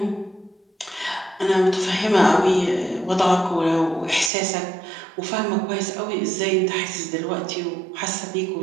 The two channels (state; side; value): drops out; left; at 4.3 s